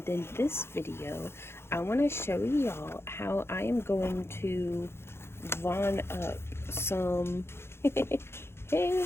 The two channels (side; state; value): right; late; 0.12 ms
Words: in this video I want to show y'all how I am going to Von up some hey